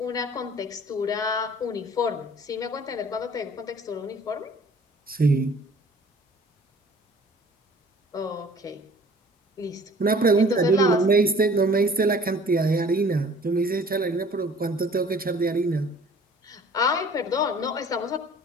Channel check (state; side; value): normal; both; correlation 0.51